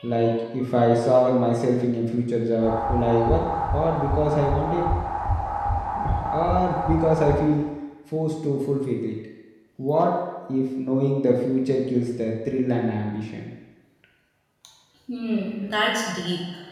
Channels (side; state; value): both; identical; correlation 1.00